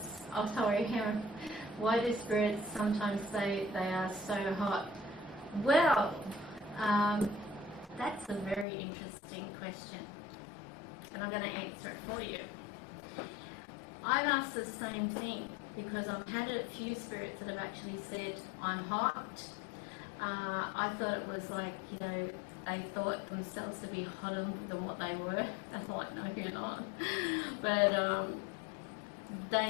sorry, why do spirits sometimes say they are so hot? Well, that's a very interesting question, and I'm going to answer it for you. I've asked the same thing because I've had a few spirits that have actually said, I'm hot. I thought it was like, they thought themselves to be hotter than what they were. That's like, no, you're not. But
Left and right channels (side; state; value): right; drops out; at 8.7 s